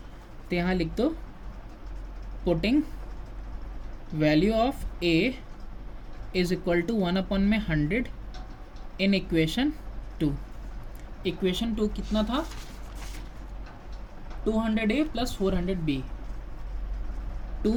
तो यहाँ लिख दो putting value of a is equal to 1 upon में 100 इन इक्वेशन 2, इक्वेशन 2 कितना था 200a plus 400b,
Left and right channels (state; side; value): identical; both; correlation 1.00